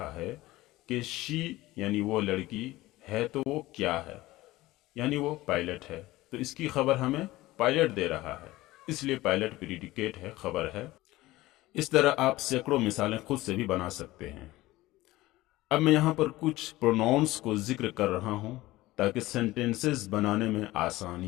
ہے کہ شی یعنی وہ لڑکی ہے تو وہ کیا ہے، یعنی وہ پائلٹ ہے، تو اس کی خبر ہمیں پائلٹ دے رہا ہے، اس لیے پائلٹ پریڈیکیٹ ہے، خبر ہے۔ اس طرح آپ سینکڑوں مثالیں خود سے بھی بنا سکتے ہیں۔ اب میں یہاں پر کچھ پروناؤنس کو ذکر کر رہا ہوں تاکہ سینٹینسز بنانے میں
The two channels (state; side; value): quieter; right; 18.0 dB